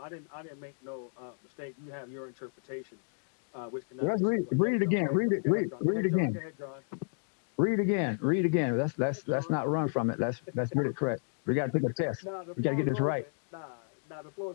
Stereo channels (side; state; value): right; silent; digital silence